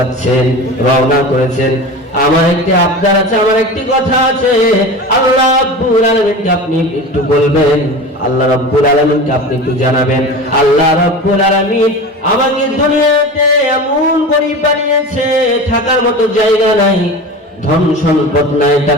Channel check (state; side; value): normal; both; correlation 0.31